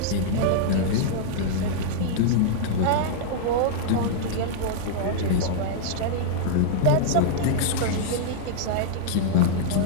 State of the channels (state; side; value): different; both; correlation -0.02